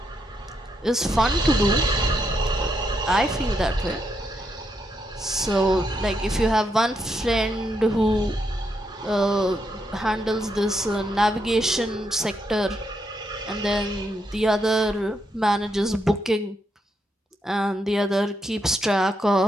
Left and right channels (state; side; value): normal; both; correlation 0.80